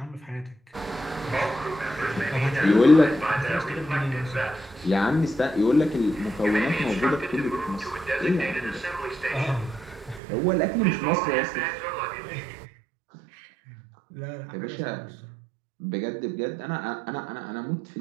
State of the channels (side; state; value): left; drops out; at 10.2 s